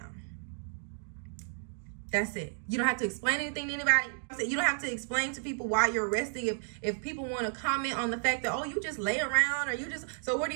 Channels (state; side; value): silent; left; digital silence